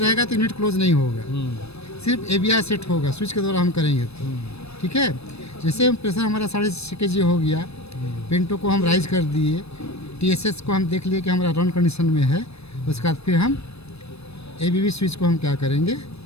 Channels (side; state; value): right; late; 0.79 ms